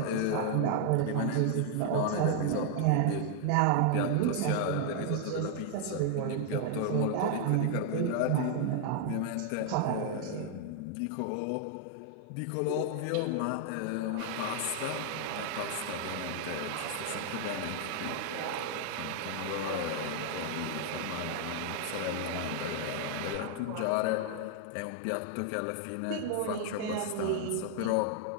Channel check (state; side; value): different; both; correlation 0.00